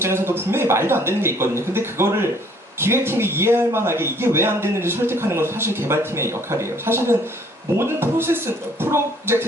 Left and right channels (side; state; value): both; normal; correlation 0.59